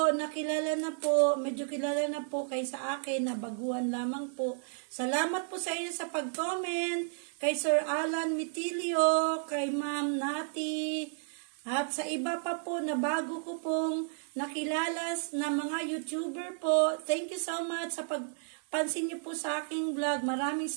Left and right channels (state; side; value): silent; left; digital silence